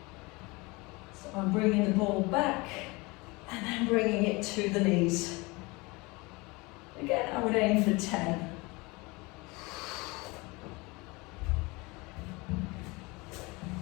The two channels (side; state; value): right; quieter; 25.0 dB